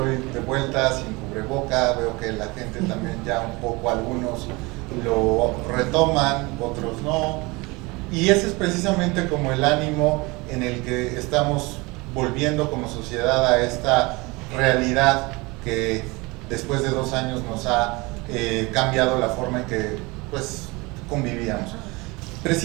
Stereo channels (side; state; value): left; quieter; 24.8 dB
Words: de vuelta sin cubreboca. Veo que la gente también ya un poco, algunos lo retoman, otros no, y ese es precisamente como el ánimo en el que estamos volviendo como sociedad a esta realidad que después de 2 años nos ha cambiado la forma en que pues convivíamos.